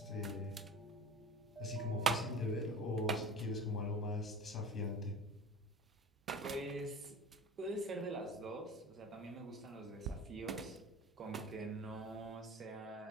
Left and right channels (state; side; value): normal; both; correlation 0.37